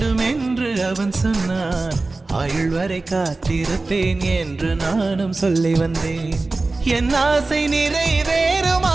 என்று அவன் சொன்னான், ஆயுள் வரை காத்திருப்பேன் என்று நானும் சொல்லி வந்தேன். என் ஆசை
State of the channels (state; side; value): quieter; left; 3.4 dB